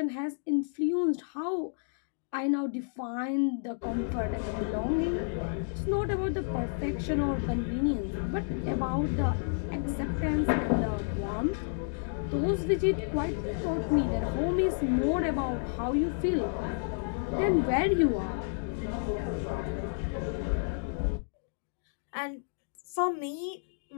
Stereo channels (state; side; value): silent; right; digital silence